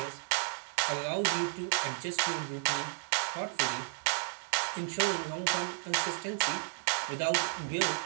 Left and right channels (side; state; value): left; silent; digital silence